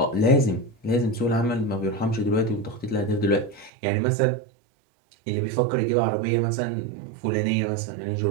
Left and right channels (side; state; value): left; drops out; at 3.7 s